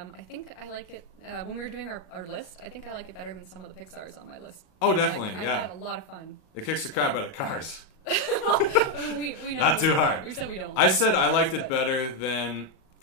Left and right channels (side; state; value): right; late; 38 ms